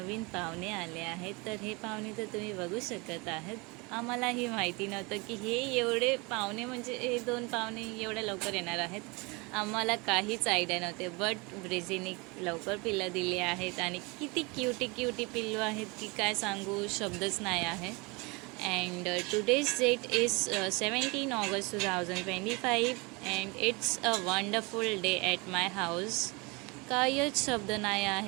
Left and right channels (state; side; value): quieter; left; 27.3 dB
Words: पाहुणे आले आहेत. तर हे पाहुणे तर तुम्ही बघू शकत आहात. आम्हालाही माहिती नव्हतं की हे एवढे पाहुणे, म्हणजे हे 2 पाहुणे एवढ्या लवकर येणार आहेत. आम्हाला काहीच आयडिया नव्हते. बट ब्रेझीने लवकर पिल्लं दिली आहेत आणि किती क्यूटी क्यूटी पिल्लू आहेत की काय सांगू, शब्दच नाही आहे. And today's date is 17 August 2025 and it's a wonderful day at my house. काहीच शब्द नाही